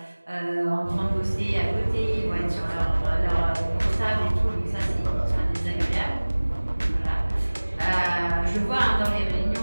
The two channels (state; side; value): inverted; both; correlation -1.00